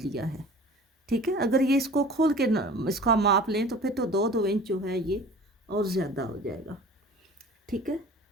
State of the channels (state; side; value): normal; both; correlation 0.43